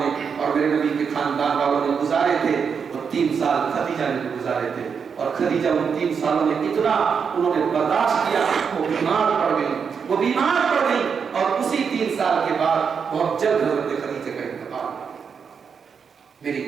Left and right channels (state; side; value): quieter; left; 6.4 dB